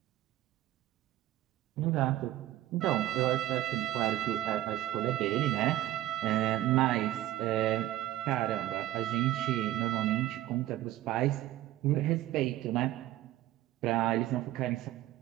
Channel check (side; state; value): left; quieter; 14.6 dB